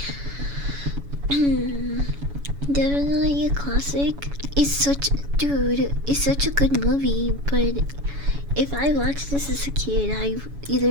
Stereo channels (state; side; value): late; left; 7.1 ms